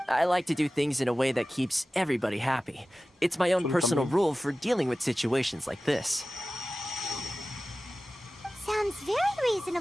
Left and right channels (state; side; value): normal; both; correlation 0.96